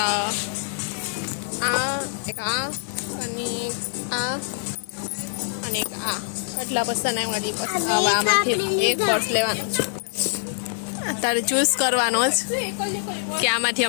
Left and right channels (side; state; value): right; silent; digital silence